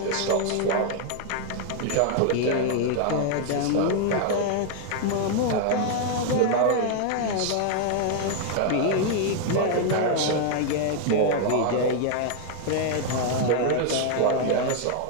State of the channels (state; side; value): different; both; correlation 0.00